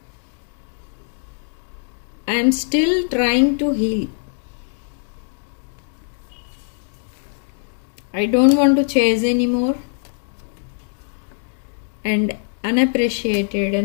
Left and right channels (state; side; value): silent; right; digital silence